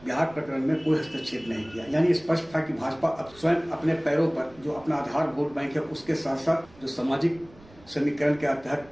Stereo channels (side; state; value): right; noise; rumble, 25 dB below the sound